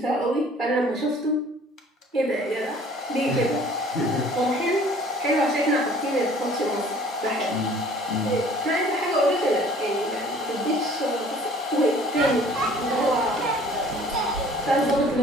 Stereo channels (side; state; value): both; normal; correlation 0.52